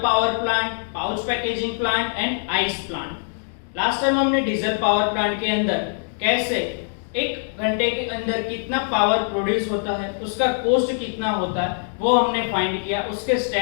power plant, pouch packaging plant and ice plant. Last time हमने डीजल पावर प्लांट के अंदर कैसे एक घंटे के अंदर कितना पावर प्रोड्यूस होता है, उसका कॉस्ट कितना होता है, वो हमने फाइंड किया। उसके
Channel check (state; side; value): silent; right; digital silence